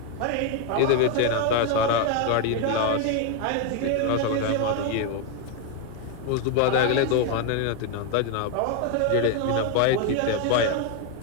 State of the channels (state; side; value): different; both; correlation 0.01